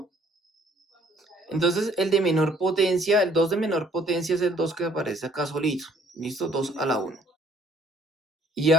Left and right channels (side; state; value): both; normal; correlation 0.60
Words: Entonces el de menor potencia, el 2 de menor potencia es el 2 que aparece acá solito. ¿Listo? 2 a la 1. Y